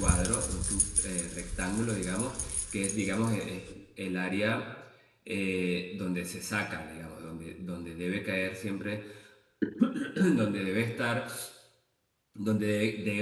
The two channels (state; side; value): identical; both; correlation 1.00